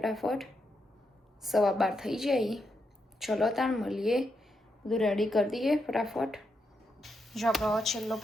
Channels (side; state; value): both; normal; correlation 0.83